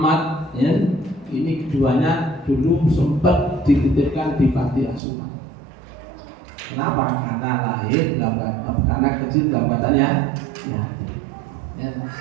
ya, ini keduanya dulu sempat dititipkan di panti asuhan. Kenapa? Karena lahir dalam karena kecil dalam keadaannya ya.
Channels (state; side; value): drops out; left; at 5.0 s